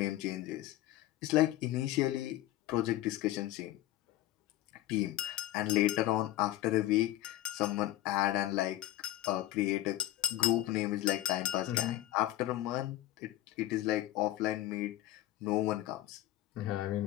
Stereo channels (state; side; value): quieter; right; 14.7 dB